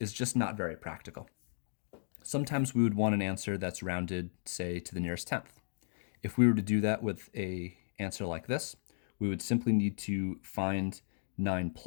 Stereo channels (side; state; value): right; silent; digital silence